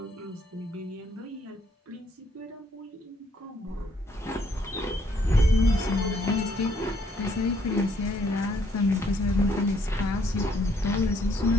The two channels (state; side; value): normal; both; correlation 0.68